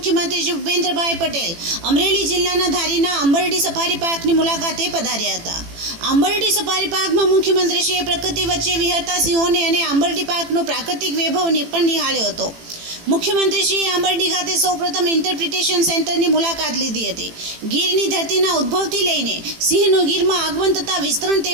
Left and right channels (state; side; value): late; left; 18 ms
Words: શ્રી ભૂપેન્દ્રભાઈ પટેલ અમરેલી જિલ્લાના ધારીના આંબરડી સફારી પાર્કની મુલાકાતે પધાર્યા હતા। આંબરડી સફારી પાર્કમાં મુખ્યમંત્રીશ્રીએ પ્રકૃતિ વચ્ચે વિહરતા સિંહોને અને આંબરડી પાર્કનો પ્રાકૃતિક વૈભવને પણ નિહાળ્યો હતો। મુખ્યમંત્રીશ્રીએ આંબરડી ખાતે સૌપ્રથમ ઇન્ટરપ્રિટેશન સેન્ટરની મુલાકાત લીધી હતી। ગીરની ધરતીના ઉદ્ભવથી લઈને સિંહનો ગીરમાં આગમન તથા વિસ્તરણ